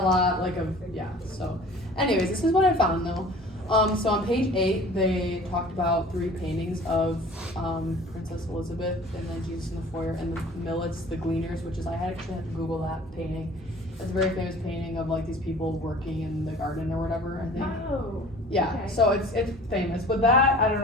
a lot like of yeah. So, anyways, this is what I found though. So on page 8, they talked about 3 paintings of Princess Elizabeth and then Jesus in the foyer and the Millets, the Gleaners, which is I actually had to Google that painting. It's a very famous painting of like these people working in the garden or whatever. I think. Oh. Yeah, Okay. so it's famous, but that I don't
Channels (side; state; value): both; normal; correlation 0.46